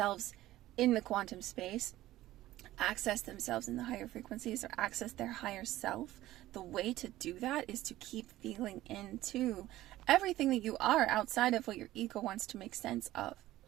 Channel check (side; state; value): left; quieter; 15.5 dB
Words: in the quantum space, access themselves in the higher frequencies, or access their higher self, the way to do that is to keep feeling into everything that you are outside of what your ego wants to make sense of.